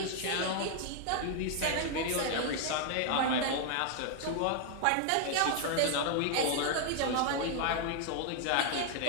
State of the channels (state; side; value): different; both; correlation 0.00